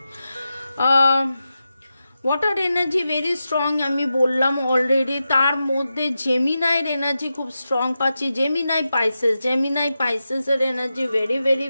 ওয়াটার এনার্জি ভেরি স্ট্রং, আমি বললাম অলরেডি। তার মধ্যে জেমিনাইয়ের এনার্জি খুব স্ট্রং পাচ্ছি, জেমিনাই পাইসেসের energy very very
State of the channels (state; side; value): inverted; both; correlation -0.91